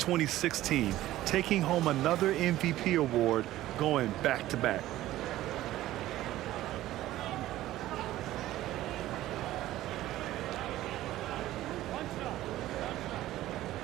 taking home another MVP award, going back-to-back.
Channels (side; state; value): left; quieter; 15.0 dB